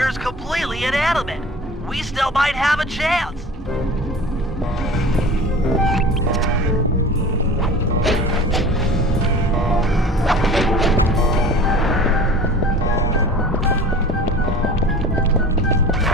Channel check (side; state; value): both; normal; correlation 0.40